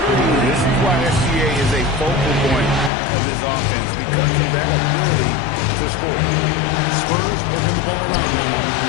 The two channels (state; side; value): drops out; right; at 2.9 s